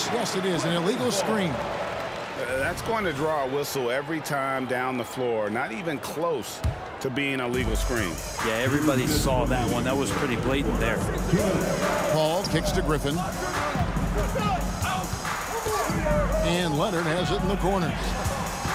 it is, an illegal screen. That's going to draw a whistle every time down the floor. Not even close to being a legal screen. Yeah, everybody saw that one. That was pretty blatant there. Paul kicks to Griffin. And Leonard has it in the corner.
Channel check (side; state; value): both; identical; correlation 1.00